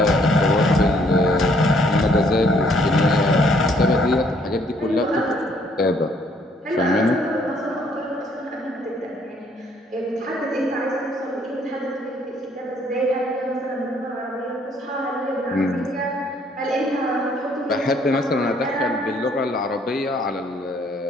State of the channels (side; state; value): both; normal; correlation 0.65